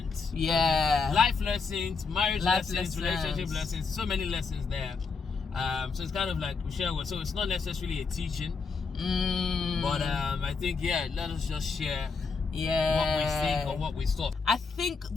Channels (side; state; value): right; quieter; 4.9 dB